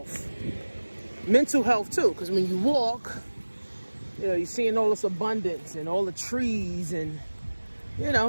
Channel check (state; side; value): inverted; both; correlation -1.00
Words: Mental health too, because when you walk, you're seeing all this abundance and all the trees and,